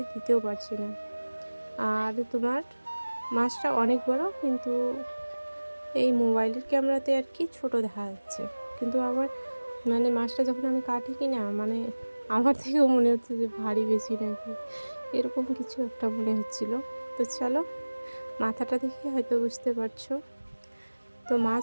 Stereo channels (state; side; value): inverted; both; correlation -1.00